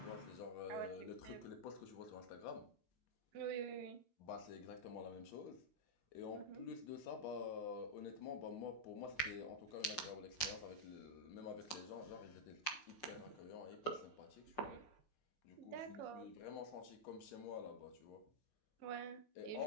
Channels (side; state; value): right; late; 6.1 ms